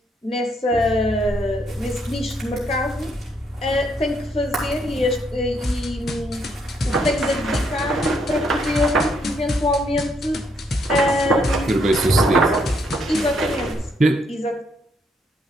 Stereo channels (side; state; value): both; normal; correlation 0.73